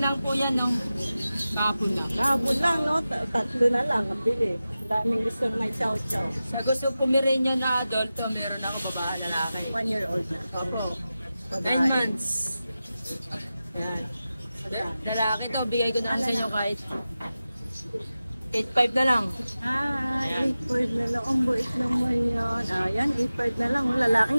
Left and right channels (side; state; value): both; inverted; correlation -0.94